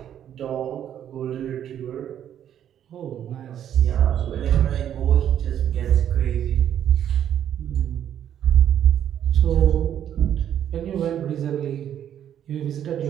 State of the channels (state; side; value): quieter; left; 10.1 dB